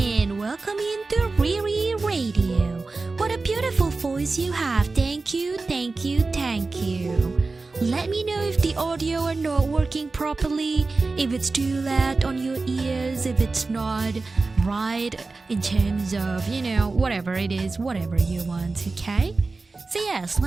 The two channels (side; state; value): left; quieter; 3.7 dB